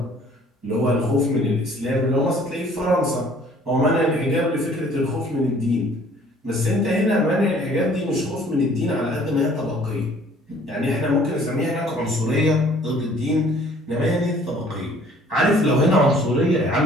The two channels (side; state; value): both; normal; correlation 0.55